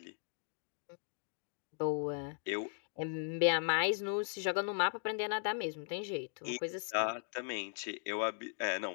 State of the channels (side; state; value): right; silent; digital silence